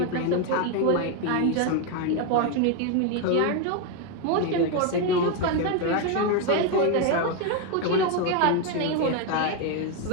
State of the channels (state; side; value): different; both; correlation 0.02